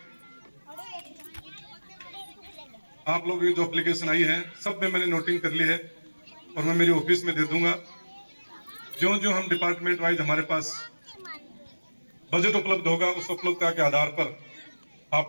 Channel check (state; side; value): inverted; both; correlation -1.00